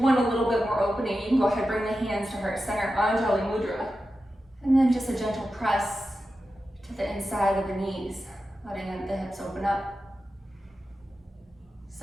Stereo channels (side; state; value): both; normal; correlation 0.92